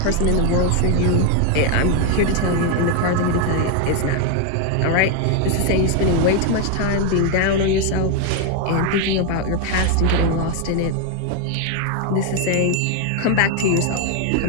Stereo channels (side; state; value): both; different; correlation 0.01